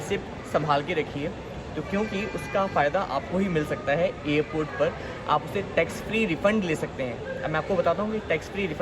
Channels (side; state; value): both; identical; correlation 1.00